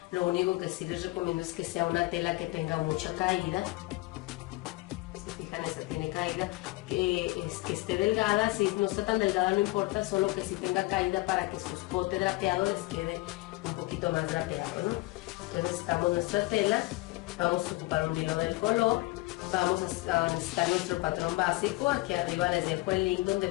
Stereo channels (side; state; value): right; quieter; 21.6 dB